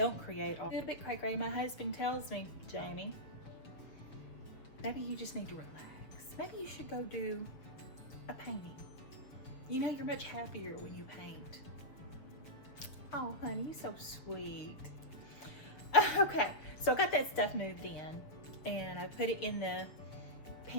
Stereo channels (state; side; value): late; right; 7.1 ms